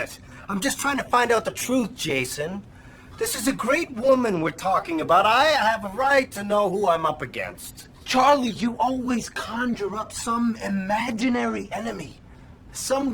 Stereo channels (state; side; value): identical; both; correlation 1.00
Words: I'm just trying to find out the truth, Jason. This is a great woman we're talking about. I have a right to know who I'm up against. Charlie, you always conjure up some imaginary enemy.